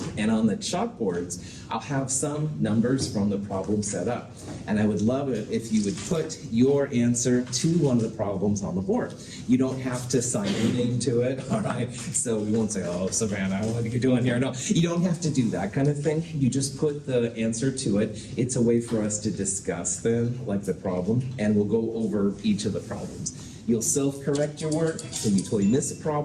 And on the chalkboards, I'll have some numbers from the problem set up. And I would love it if you would put your answer to one of the problems on the board. You don't have to sign your name to it, all right? So we won't say, oh, Savannah, what are you doing here? No, you don't have to do that kind of thing. You just put the answer to it. It's a way for us to discuss them, like the problem, and we'll go over each of the problems. You'll self-correct your work, so you totally miss a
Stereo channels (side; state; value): both; identical; correlation 1.00